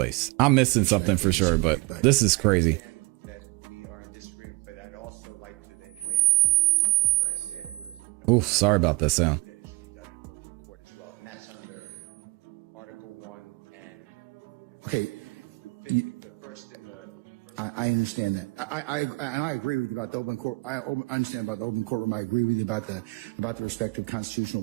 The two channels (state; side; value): quieter; left; 26.1 dB